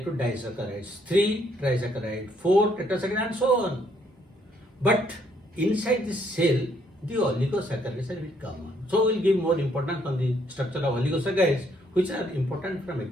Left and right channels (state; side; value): normal; both; correlation 0.69